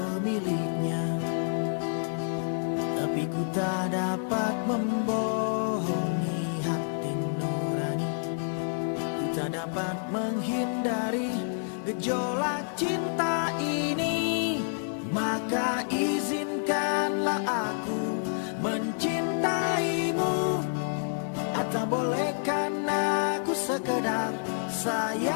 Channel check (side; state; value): right; silent; 59 dB below the other